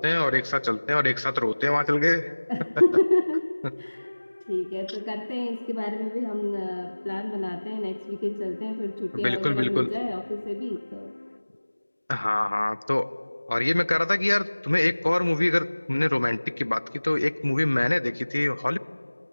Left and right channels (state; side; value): inverted; both; correlation -1.00